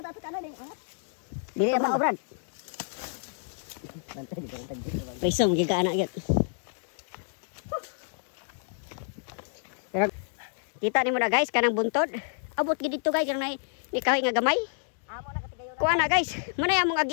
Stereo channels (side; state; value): right; silent; digital silence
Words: tato ano din. Dili na Brad. Bantay di bantay. Prisong giga anak gyud. Pero kita nimo na guys kanang buntod. Abot gid dito guys kanang ni kahoy nga gamay. Amo na katigayon. Kuha na guys. Muna among